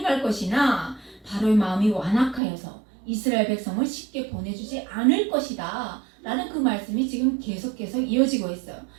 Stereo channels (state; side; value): drops out; left; at 2.4 s